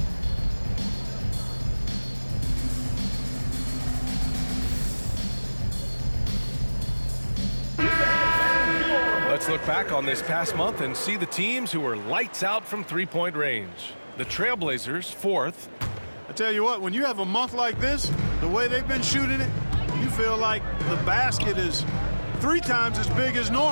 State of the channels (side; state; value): both; inverted; correlation -1.00